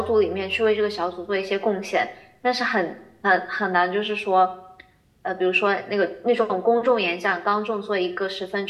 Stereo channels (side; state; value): both; identical; correlation 1.00